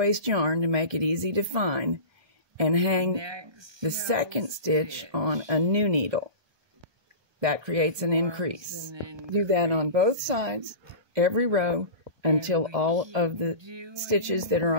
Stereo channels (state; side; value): late; left; 1.2 ms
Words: yarn to make it easy to find, and hang the second stitch on a new needle. That creates an increase. Do that on both sides, every row, until all of the stitches that are